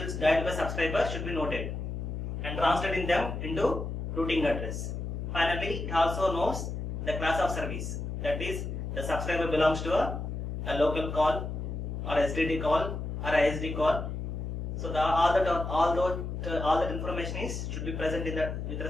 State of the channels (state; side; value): noise; left; hum, 4 dB below the sound